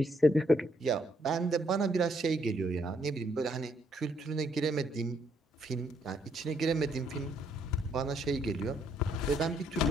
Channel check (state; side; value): normal; both; correlation 0.71